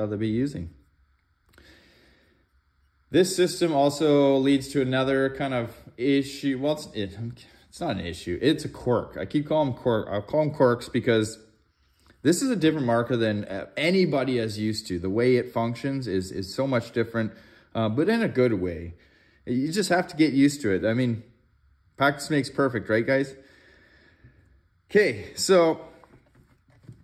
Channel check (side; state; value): both; identical; correlation 1.00